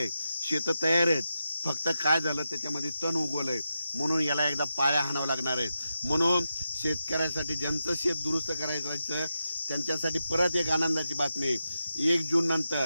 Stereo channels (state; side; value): inverted; both; correlation -0.88